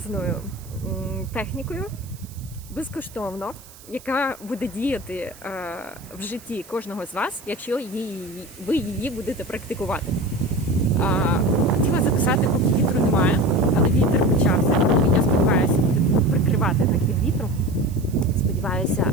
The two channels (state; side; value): noise; right; hiss, 21 dB below the sound